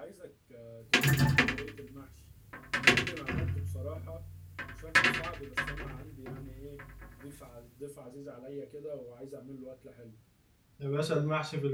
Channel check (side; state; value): both; identical; correlation 1.00